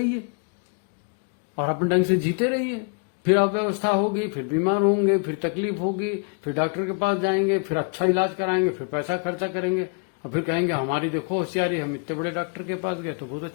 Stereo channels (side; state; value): right; quieter; 38.2 dB